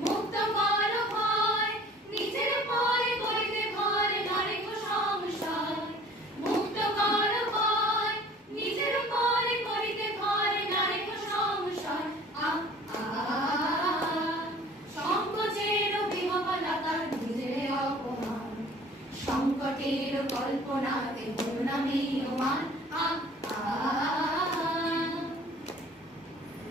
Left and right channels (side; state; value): both; normal; correlation 0.49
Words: মুক্ত কর ভয় নিজের ভয় করিতে ভয় নারে কো সংশয় মুক্ত কর ভয় নিজের ভয় করিতে ভয় নারে কো সংশয় সংকোচের বিহবলতা নিজের অপমান সংকটের কল্পনাতে করুণামীয়মান